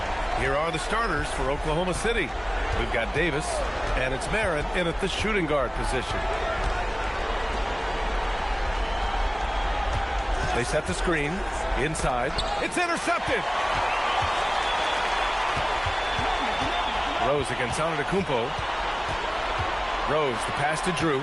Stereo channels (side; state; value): both; identical; correlation 1.00